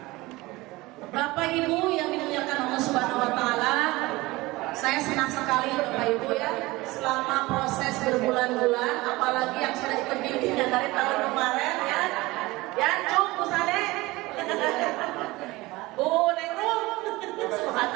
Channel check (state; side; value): quieter; left; 20.7 dB